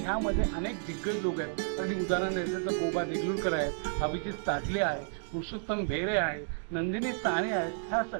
अनेक दिग्गज लोक आहेत. अगदी उदाहरण द्यायचं तर गोबा देगलूरकर आहेत, अभिजित ताजले आहे, पुरुषोत्तम बेरे आहे, नंदिनी साने आहेत. ह्या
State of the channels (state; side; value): silent; left; digital silence